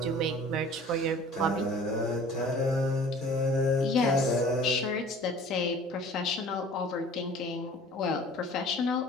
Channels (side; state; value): both; normal; correlation 0.47